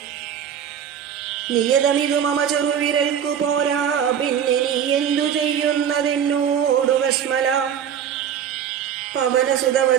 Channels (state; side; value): quieter; left; 8.7 dB